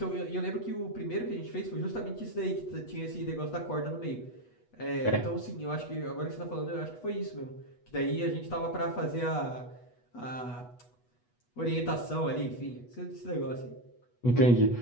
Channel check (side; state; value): right; late; 8.2 ms